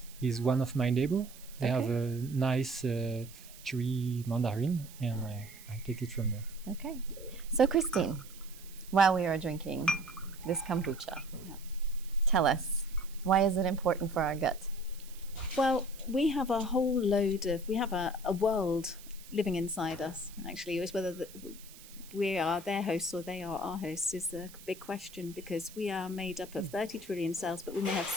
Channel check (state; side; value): noise; right; hiss, 19 dB below the sound